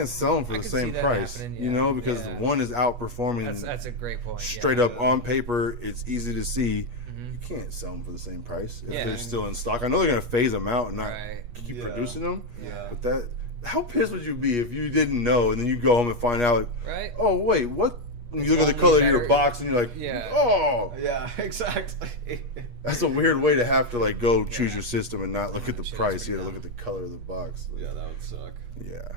sell them for the same price, because one is outperforming. That's a great point. Straight up on paper, it's easy to see. You can't sell them for the same price if they're still in stock. I know they're going to phase them out and not keep producing them. Yeah. But how pissed would you be if you didn't know and then you go home and find out, oh, wait, what? And you look at the color of your box and you're like, oh. Yeah, exactly. That's a weird way to have to like go choose your system and not look at the price. You have to look at the color of the box. Yeah, that would suck. Yeah.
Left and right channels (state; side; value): late; left; 8.4 ms